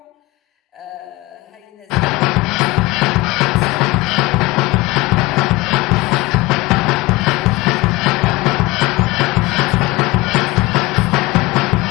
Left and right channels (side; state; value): right; quieter; 20.3 dB